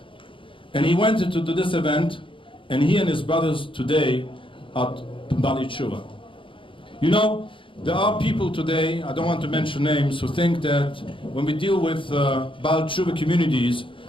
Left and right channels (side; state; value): right; late; 0.25 ms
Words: And he went into this event, and he and his brothers today are Bali Tshuva. You know, there are people today, I don't want to mention names, who think that when we deal with Baal Tshuva communities